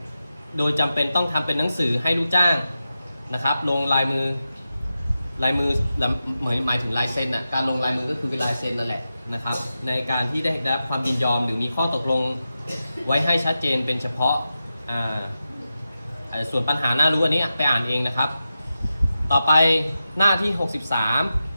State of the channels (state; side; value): inverted; both; correlation -0.91